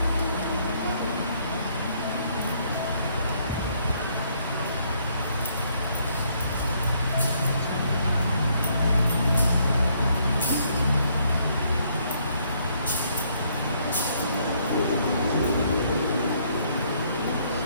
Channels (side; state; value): both; inverted; correlation -0.69